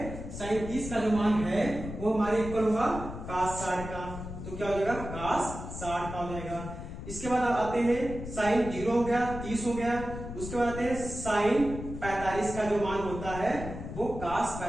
साइन 30 का जो मान है वो हमारे इक्वल होगा cos 60 का। तो क्या हो जाएगा, cos 60 का हो जाएगा। इसके बाद आते हैं साइन 0 हो गया, 30 हो गया। उसके बाद आते हैं साइन 45 का जो मान होता है वो cos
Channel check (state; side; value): noise; left; rumble, 9 dB below the sound